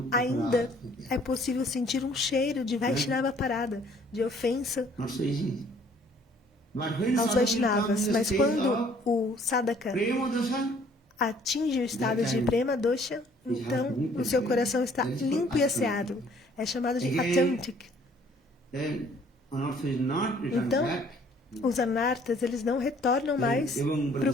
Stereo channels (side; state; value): both; normal; correlation 0.59